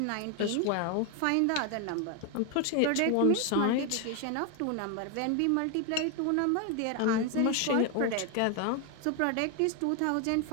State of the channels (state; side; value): different; both; correlation 0.01